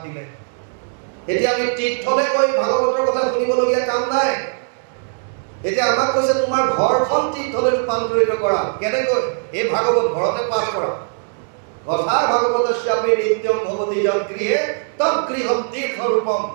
দিলে। এতিয়া আমি তীৰ্থলৈ গৈ ভাগৱতৰ কথা শুনিবলগীয়া কাম নাই। এতিয়া আমাক কৈছে তোমাৰ ঘৰখন তীৰ্থলৈ ৰূপান্তৰিত কৰা। কেনেকৈ? এই ভাগৱত ঘৰতে পাঠ কৰা। কথা ভাগৱতস্যাপি নিত্যম ভৱতি যৎ গৃহে তৎ গৃহম তীৰ্থৰূপম।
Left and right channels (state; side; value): silent; left; digital silence